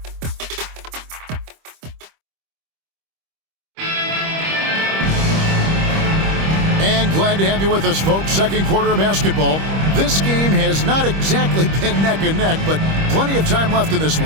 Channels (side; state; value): left; late; 25 ms